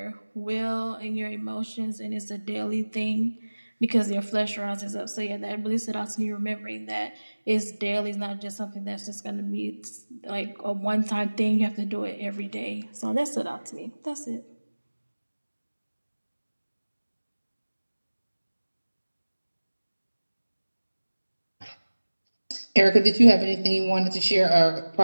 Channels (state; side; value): inverted; both; correlation -1.00